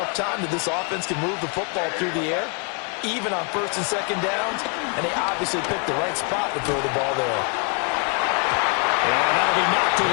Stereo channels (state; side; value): quieter; right; 36.9 dB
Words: time that this offense can move the football through the air, even on 1st and 2nd downs, and they obviously picked the right spot to throw the ball there. And that'll be knocked